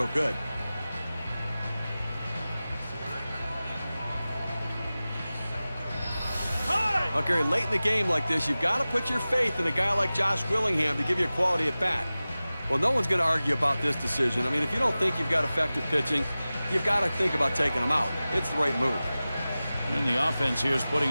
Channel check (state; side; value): inverted; both; correlation -0.96